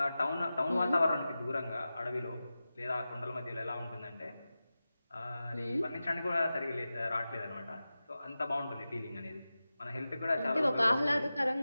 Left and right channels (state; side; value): inverted; both; correlation -0.94